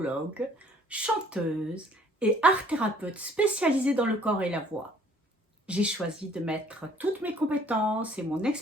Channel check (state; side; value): normal; both; correlation 0.58